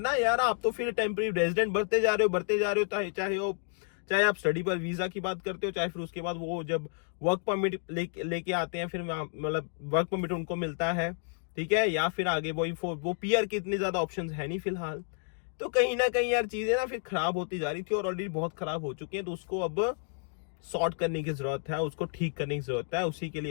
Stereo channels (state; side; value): silent; right; 57 dB below the other